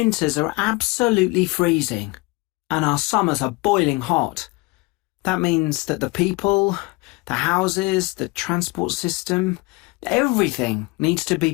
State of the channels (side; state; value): right; quieter; 24.6 dB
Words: are absolutely freezing, and our summers are boiling hot. That means that the people, the houses, the transport system, everything needs to be